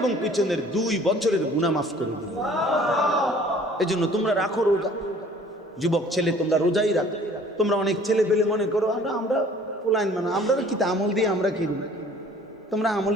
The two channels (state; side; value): normal; both; correlation 0.52